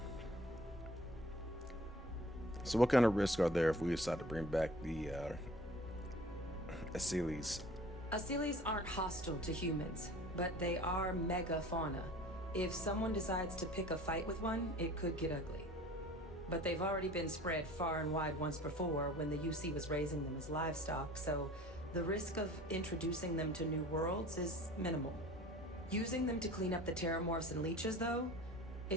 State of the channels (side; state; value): both; normal; correlation 0.46